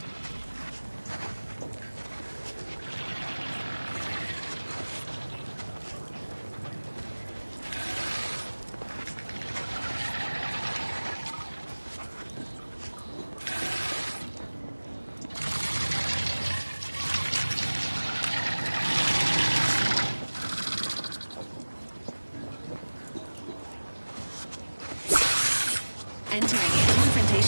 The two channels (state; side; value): inverted; both; correlation -1.00